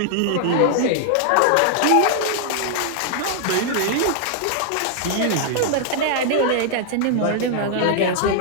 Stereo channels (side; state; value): both; different; correlation 0.00